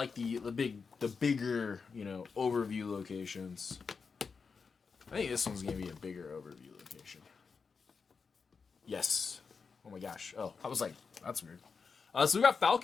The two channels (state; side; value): quieter; right; 5.3 dB